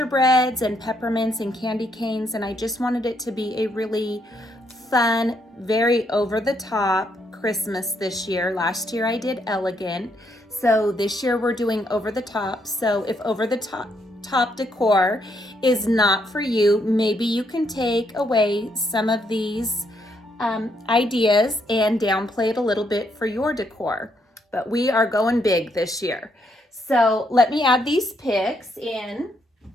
and peppermints and candy canes, and I just wanted it to be a really fun, very over-the-top Christmas this year. Last year I did elegant, so this year we're doing over-the-top. So if over-the-top decor is not for you, maybe you can take away some of these ideas and downplay it a little bit for your decor. But we are going big this year. So let me add these picks in.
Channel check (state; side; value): normal; both; correlation 0.74